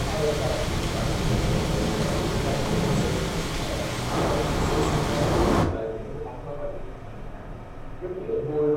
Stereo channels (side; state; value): both; identical; correlation 1.00